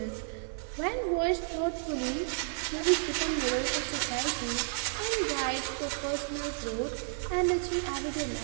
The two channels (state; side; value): silent; left; digital silence